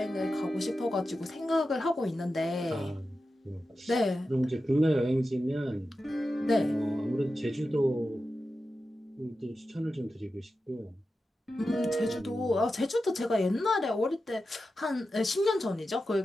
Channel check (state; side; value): normal; both; correlation 0.91